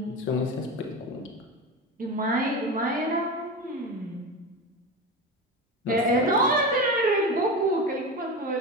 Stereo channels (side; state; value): both; normal; correlation 0.24